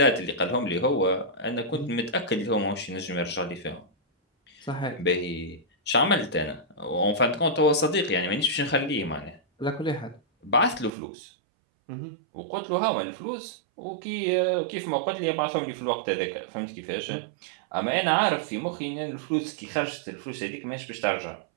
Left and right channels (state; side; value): drops out; left; at 10.9 s